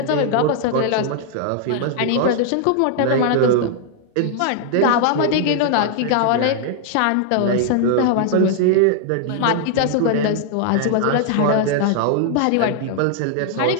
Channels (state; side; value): different; both; correlation 0.00